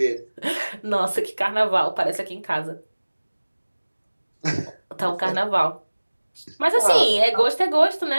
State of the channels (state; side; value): inverted; both; correlation -1.00